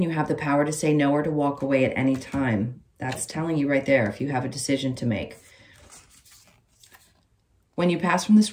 you have the power to say no or to walk away at any time. That's telling you right there if you have a decision to make. When you pass from this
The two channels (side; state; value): both; identical; correlation 1.00